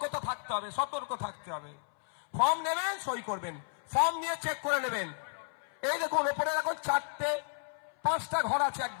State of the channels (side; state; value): right; silent; 56 dB below the other